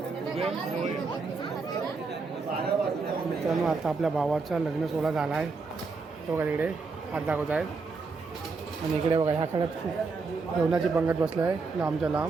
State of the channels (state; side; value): quieter; left; 4.4 dB